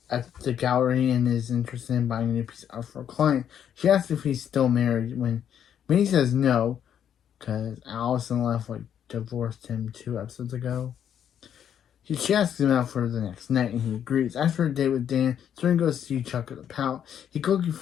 gallery and is interested in buying a new piece of art for a client. She asks if he's still married when he says no, because Allison divorced him 2 episodes ago. She asks him out for the next night, and he agrees. After a date with Dan, Serena goes to see Chuck at the pout. He quickly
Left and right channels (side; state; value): right; quieter; 9.2 dB